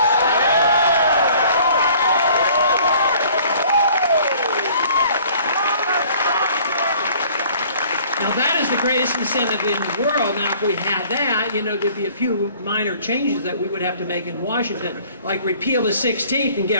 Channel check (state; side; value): inverted; both; correlation -0.53